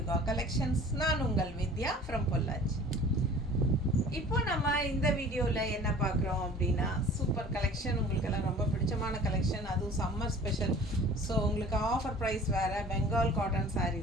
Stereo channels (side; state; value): both; normal; correlation 0.46